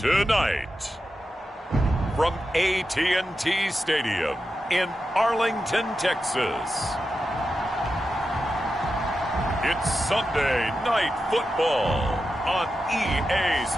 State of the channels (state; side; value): normal; both; correlation 0.90